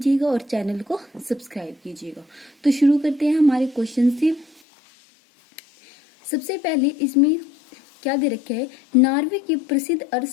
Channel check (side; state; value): right; drops out; at 4.6 s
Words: और चैनल को सब्सक्राइब कीजिएगा। तो शुरू करते हैं हमारे क्वेश्चन से। सबसे पहले इसमें क्या दे रखा है, नॉर्वे के प्रसिद्ध